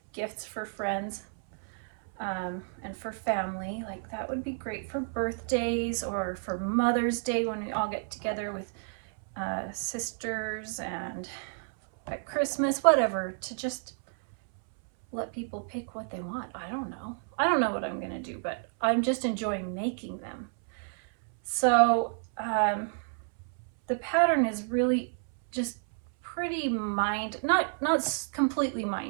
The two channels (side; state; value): left; silent; 58 dB below the other